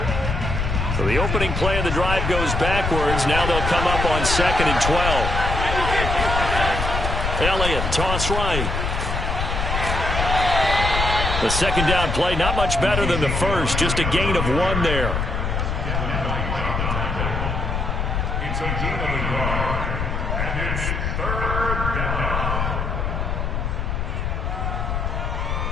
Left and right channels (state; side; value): noise; left; rumble, 1 dB below the sound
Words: So the opening play of the drive goes backwards. Now they'll come up on 2nd and 12. Elliott, toss right. The second down play, not much better than the first. Just a gain of 1 there. It's a gain of 1 yard, and it's 3rd down.